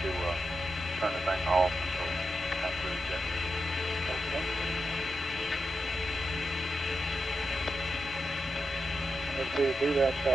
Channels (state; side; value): normal; both; correlation 0.88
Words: to turn the thing off until after ejection. Okay. Let's see, do that,